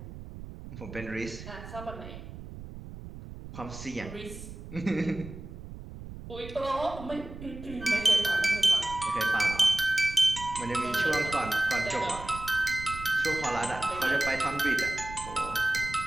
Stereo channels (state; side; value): noise; right; rumble, 12 dB below the sound